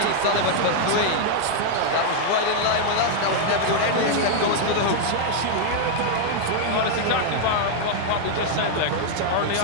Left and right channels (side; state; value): both; different; correlation 0.00